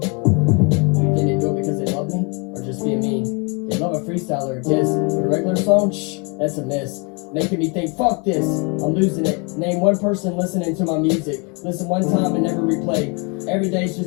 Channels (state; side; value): quieter; right; 32.5 dB